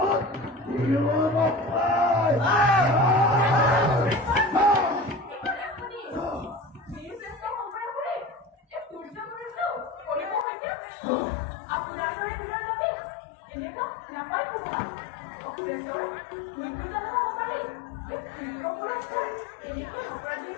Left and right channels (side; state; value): right; drops out; at 10.5 s